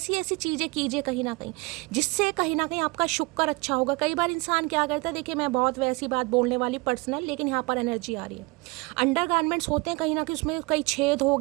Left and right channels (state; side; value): quieter; left; 24.9 dB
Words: ऐसी चीज़ें कीजिए कहीं ना कहीं, जिससे कहीं ना कहीं आपका शुक्र अच्छा होगा। कई बार इंसान क्या करता है, देखिए मैं बहुत वैसी बात बोलने वाली पर्सनल, लेकिन यहाँ पर एनर्जी आ रही है, अंडर गारमेंट्स होते हैं कहीं ना कहीं उसमें कई छेद हो